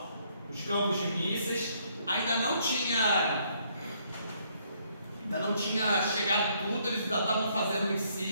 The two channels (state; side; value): inverted; both; correlation -0.69